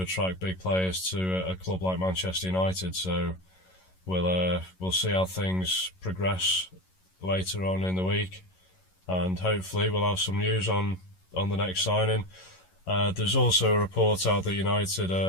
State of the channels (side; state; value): right; late; 11 ms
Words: attract big players to a club like Manchester United. So we'll see how things progress later on in the week, and hopefully we'll have some news on on the next signing. There's also a report out that United